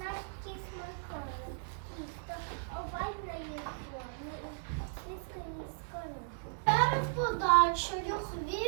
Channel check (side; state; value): left; silent; 54 dB below the other